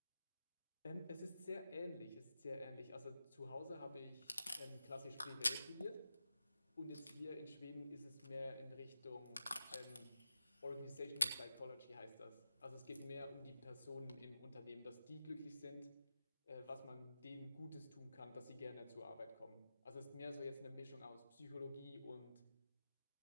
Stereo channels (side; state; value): both; inverted; correlation -0.91